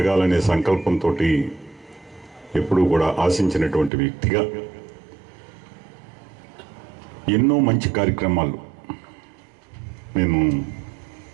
సంకల్పంతో ఎప్పుడూ కూడా ఆశించినటువంటి వ్యక్తిగా ఎన్నో మంచి కార్యక్రమాలు నేను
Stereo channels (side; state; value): left; drops out; at 3.9 s